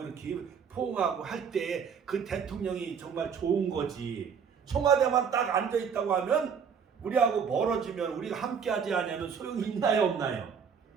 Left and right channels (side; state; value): left; quieter; 6.7 dB